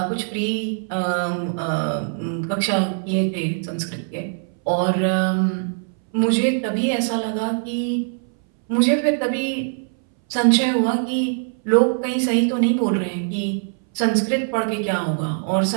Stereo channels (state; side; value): silent; left; 62 dB below the other